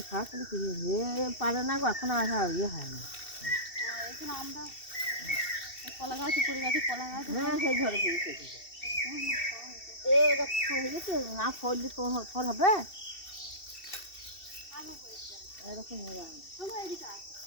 খাওয়া তাহলে ফিরিয়ে পারে না গো, এখন আর ইয়ে হয় না। এখানে আমরা কলা গাছ পড়ে গেছে, কলা গাছ। হ্যাঁ, সেই ঝড়ে ফিরেছে হয়ে গেছে, না ফললে তো ফল হবে এরকম হয়ে যায়।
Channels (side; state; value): right; late; 2.7 ms